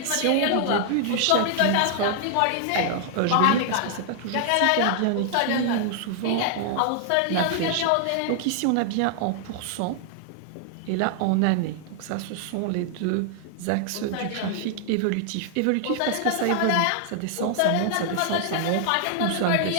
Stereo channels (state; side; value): different; both; correlation -0.01